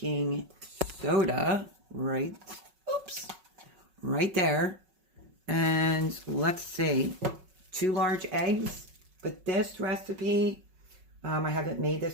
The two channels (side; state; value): left; late; 5.4 ms